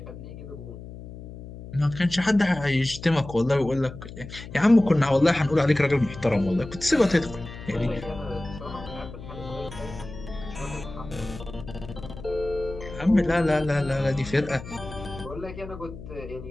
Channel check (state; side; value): noise; left; hum, 13 dB below the sound